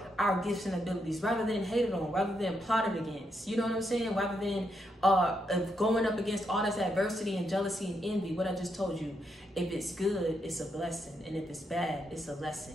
our gifts and abilities, rather than hated on, rather than plotted against, you know what I'm saying? Rather than going up against all this adversity and jealousy and envy. What I just told you, if it's good, it's a blessing. And if it's bad, it's a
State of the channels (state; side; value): normal; both; correlation 0.80